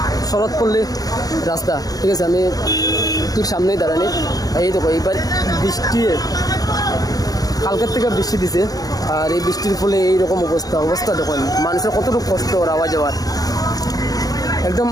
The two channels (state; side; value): late; right; 0.18 ms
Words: শরৎপল্লী রাস্তা, ঠিক আছে, আমি ঠিক সামনেই দাঁড়ানি। এই দেখো এইবার বৃষ্টি, কালকের থেকে বৃষ্টি দিছে, আর এই বৃষ্টির ফলে এইরকম অবস্থা দেখুন, মানুষের কতটুকু কষ্ট ওর আওয়া যাওয়ার। একদম